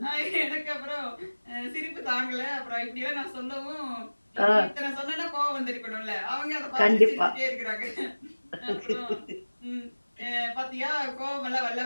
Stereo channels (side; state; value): both; inverted; correlation -1.00